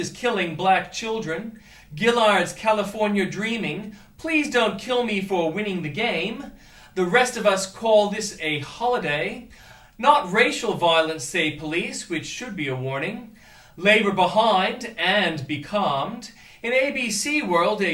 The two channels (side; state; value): both; identical; correlation 1.00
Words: killing black children. Gillard's California dreaming. Please don't kill me for winning the game. The rest of us call this a holiday. Not racial violence, say police, which should be a warning. Labor behind and becalmed. In ABC world, a